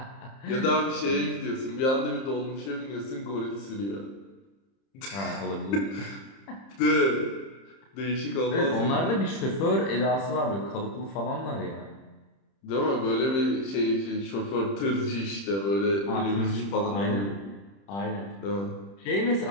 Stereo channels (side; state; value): right; late; 30 ms